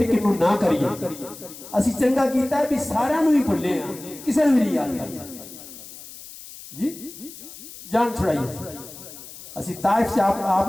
किनू ना करिए, असी चंगा कीता है भी सारियां नू ही भुले हां, किसी नू नहीं याद करते जी। जान छुड़ाइए। असी ताइफ से आप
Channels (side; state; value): left; noise; hiss, 15 dB below the sound